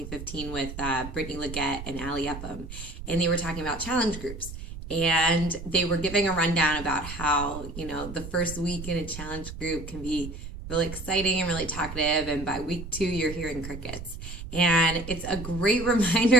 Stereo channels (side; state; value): right; noise; rumble, 10 dB below the sound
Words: with Brittany Leggett and Ali Upham. And they were talking about challenge groups. And they were giving a rundown about how, the first week in a challenge group can be really exciting and really talkative. And by week 2, you're hearing crickets. And it's a great